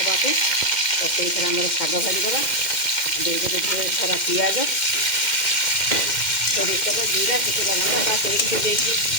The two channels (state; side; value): late; right; 2.1 ms